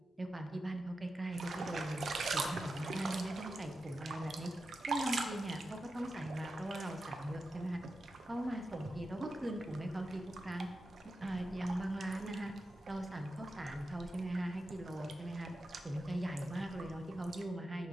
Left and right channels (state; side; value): normal; both; correlation 0.90